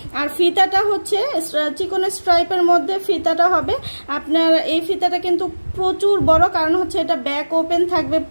আর ফিতাটা হচ্ছে চিকন স্ট্রাইপের মধ্যে ফিতাটা হবে। আপনার এই ফিতাটা কিন্তু প্রচুর বড়, কারণ হচ্ছে এটা ব্যাক ওপেন থাকবে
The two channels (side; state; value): both; inverted; correlation -1.00